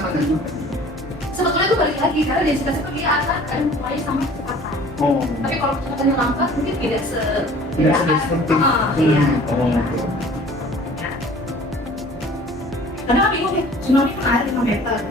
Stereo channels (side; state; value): both; normal; correlation 0.48